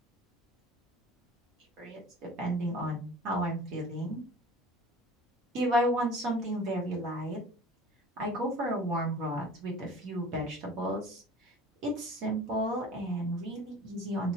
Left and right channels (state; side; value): normal; both; correlation 0.44